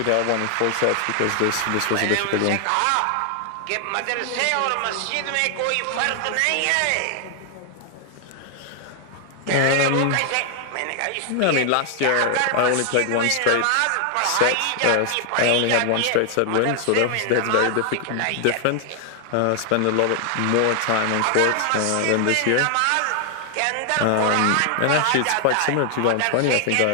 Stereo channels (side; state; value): both; different; correlation 0.00